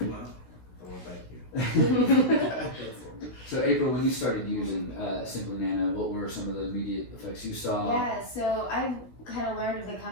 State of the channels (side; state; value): right; late; 16 ms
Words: Well, I want to thank you. So April, when you started using Simplinano, what were some of the immediate effects you saw? Yeah, so I've kind of learned of the